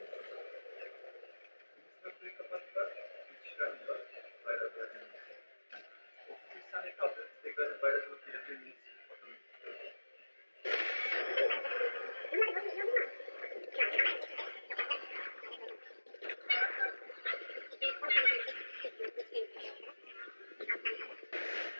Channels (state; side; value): inverted; both; correlation -1.00